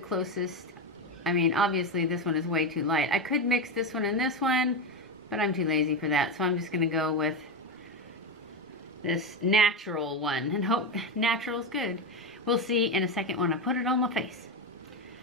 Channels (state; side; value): normal; both; correlation 0.13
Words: I mean, obviously this one is way too light. I could mix this one and this one, but I'm too lazy for that. So I'm just gonna go with this natural one and hope natural's good. We'll see in a second when I put it on my face.